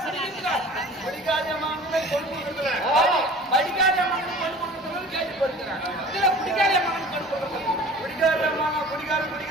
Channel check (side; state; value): both; normal; correlation 0.44